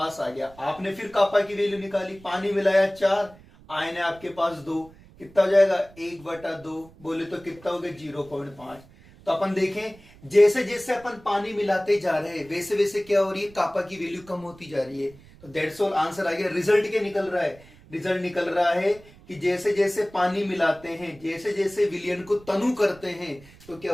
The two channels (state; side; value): noise; right; rumble, 23 dB below the sound